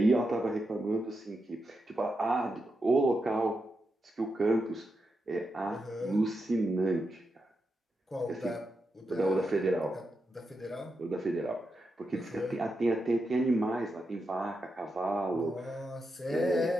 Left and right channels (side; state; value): both; normal; correlation 0.86